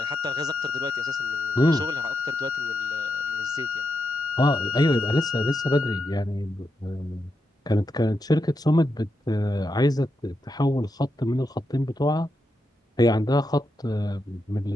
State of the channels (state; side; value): normal; both; correlation 0.85